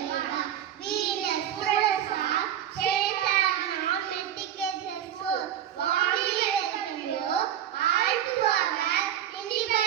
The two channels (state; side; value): quieter; left; 10.6 dB